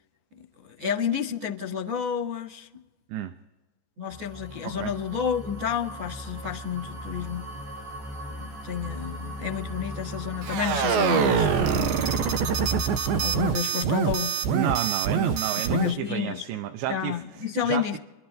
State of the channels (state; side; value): late; left; 14 ms